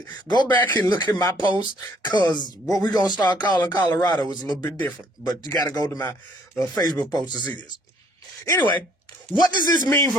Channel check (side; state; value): both; normal; correlation 0.63